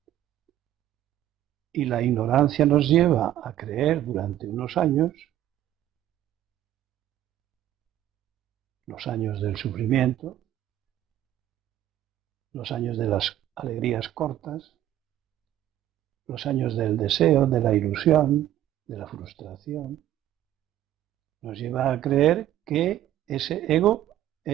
Y la ignorancia nos lleva a creer durante unos años los años del sufrimiento, los años de las alegrías cortas, los años del deseo, de la ilusión, de la frustración. Nos lleva a creer que ese ego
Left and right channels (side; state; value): left; quieter; 12.5 dB